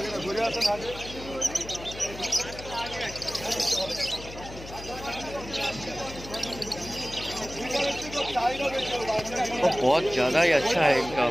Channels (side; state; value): left; noise; hum, 14 dB below the sound